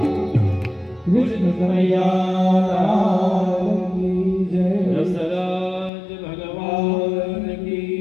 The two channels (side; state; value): right; drops out; at 5.9 s